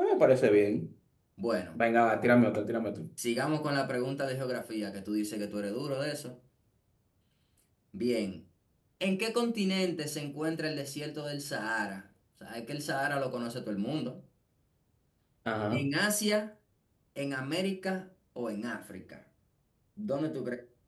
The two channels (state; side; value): identical; both; correlation 1.00